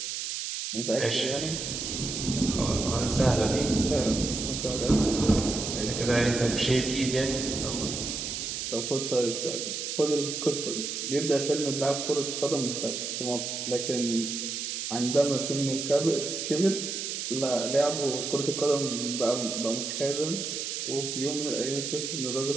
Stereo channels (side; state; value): right; noise; hiss, 4 dB below the sound